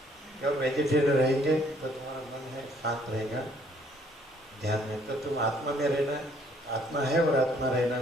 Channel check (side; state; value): both; normal; correlation 0.64